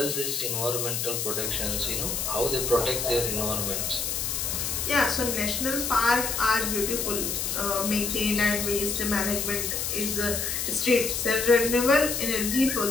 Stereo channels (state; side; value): noise; left; hiss, 1 dB below the sound